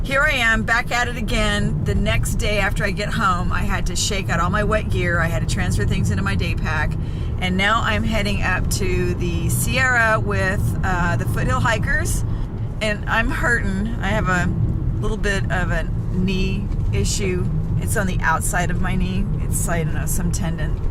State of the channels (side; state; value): both; identical; correlation 1.00